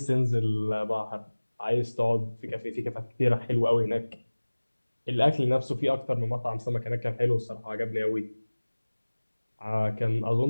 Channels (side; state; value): both; inverted; correlation -1.00